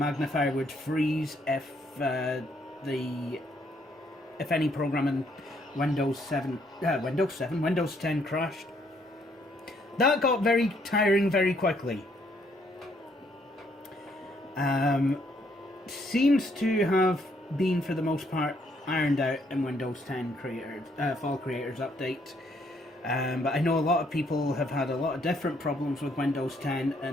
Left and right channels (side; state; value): both; normal; correlation 0.69